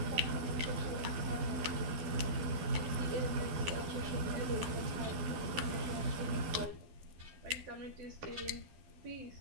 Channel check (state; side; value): late; left; 12 ms